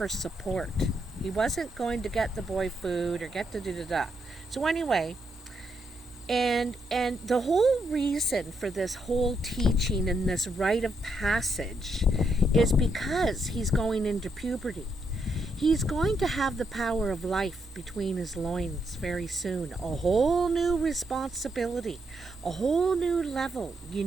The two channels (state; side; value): normal; both; correlation 0.79